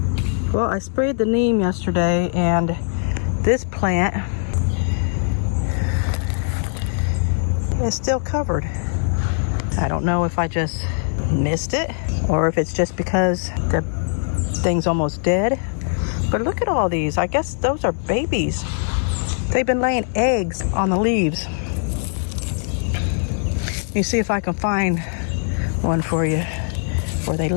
Well, I sprayed the neem yesterday, and this plant is still covered. I don't know if I just missed it or if it's just because the thing's almost dead. But look at all these. I guess those are babies. They've been laying eggs on the leaves. Let me see if I can find one for you where they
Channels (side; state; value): right; silent; digital silence